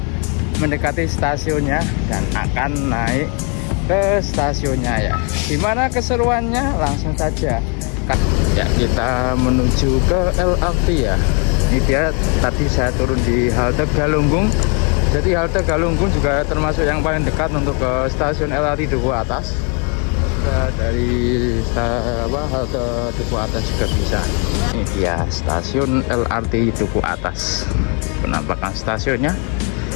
mendekati stasiunnya dan akan naik ke stasiunnya ya. Gimana keseruannya? Langsung saja. Ya, kita menuju ke LRT ya. Ini dia, tadi saya turun di halte Galunggung. Jadi halte Galunggung juga termasuk yang paling dekat untuk ke stasiun LRT Duku Atas. Dari halte Duku Atas juga bisa. Ini dia stasiun LRT Duku Atas. Penampakan stasiunnya.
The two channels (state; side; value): quieter; right; 36.3 dB